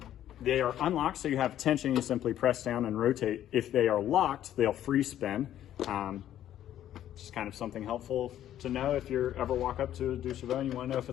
They are unlocked, so you have tension. You simply press down and rotate. If they are locked, they'll free spin. Just kind of something helpful to know if you ever walk up to a 2CV and you want to know if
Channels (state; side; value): quieter; right; 11.6 dB